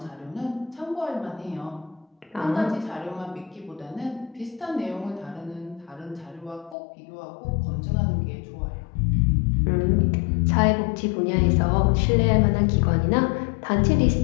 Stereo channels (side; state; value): right; drops out; at 6.8 s